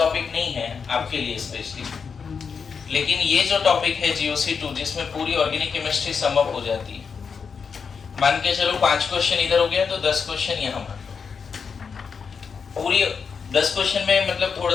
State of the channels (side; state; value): right; quieter; 5.9 dB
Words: नहीं है आपके लिए स्पेशली, लेकिन ये जो टॉपिक है GOC 2 जिसमें पूरी ऑर्गेनिक केमिस्ट्री सम अप हो जाती है, मान के चलो 5 क्वेश्चन इधर हो गया तो 10 क्वेश्चन यहाँ मान लो। पूरी 10 क्वेश्चन में मतलब